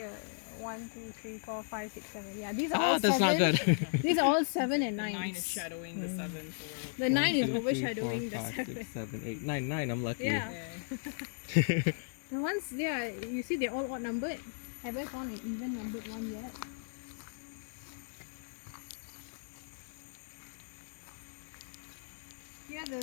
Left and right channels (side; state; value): right; silent; 54 dB below the other